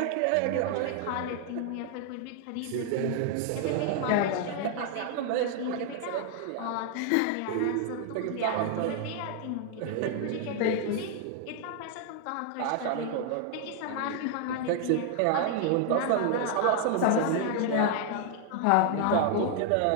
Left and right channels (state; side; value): different; both; correlation 0.00